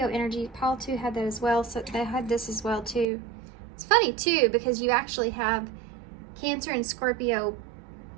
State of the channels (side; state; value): left; drops out; at 3.1 s